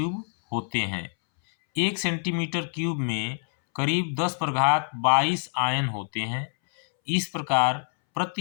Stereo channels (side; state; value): right; silent; 61 dB below the other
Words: होते हैं। 1 सेंटीमीटर क्यूब में करीब 10⁻22 आयन होते हैं। इस प्रकार